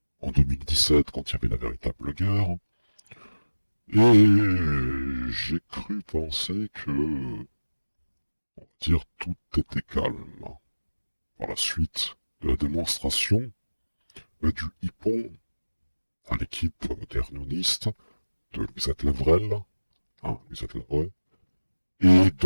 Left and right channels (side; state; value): both; inverted; correlation -1.00